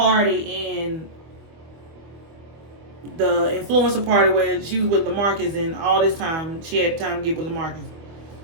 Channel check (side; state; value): left; late; 25 ms